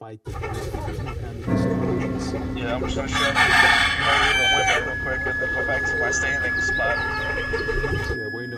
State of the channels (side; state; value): both; identical; correlation 1.00